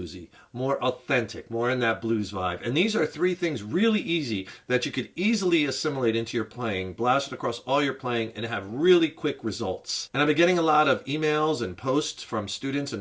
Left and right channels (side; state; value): both; identical; correlation 1.00